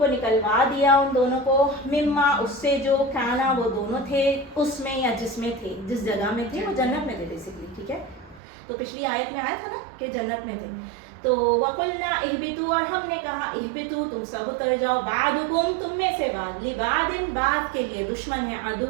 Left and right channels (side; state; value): left; drops out; at 8.4 s